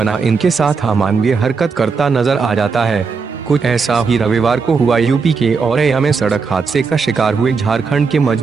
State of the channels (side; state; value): left; quieter; 5.0 dB